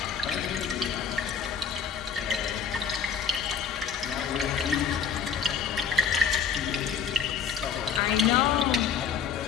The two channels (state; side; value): quieter; right; 6.8 dB